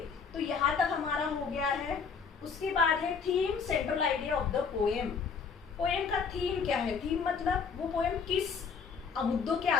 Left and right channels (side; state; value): right; quieter; 5.7 dB